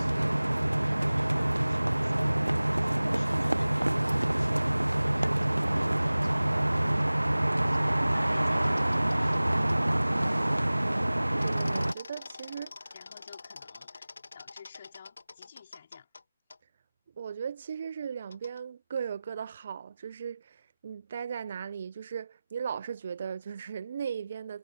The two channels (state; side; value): inverted; both; correlation -0.99